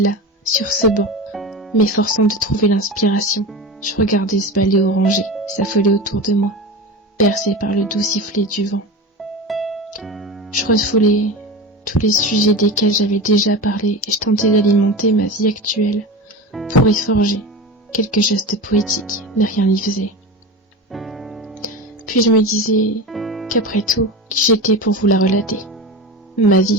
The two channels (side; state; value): both; normal; correlation 0.26